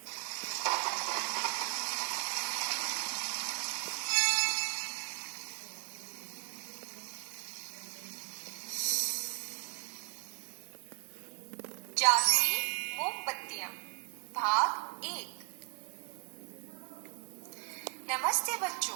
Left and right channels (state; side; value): quieter; left; 39.8 dB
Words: जादुई मोमबत्तियां भाग 1। नमस्ते